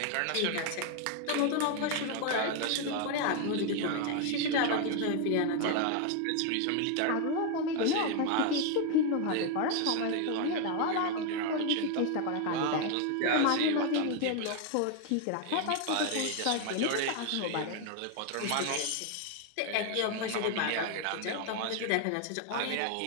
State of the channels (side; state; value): both; different; correlation 0.01